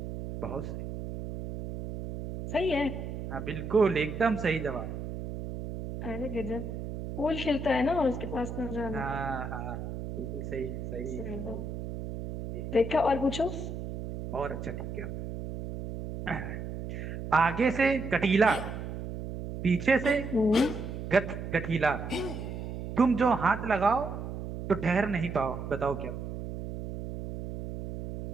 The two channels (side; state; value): right; noise; hum, 7 dB below the sound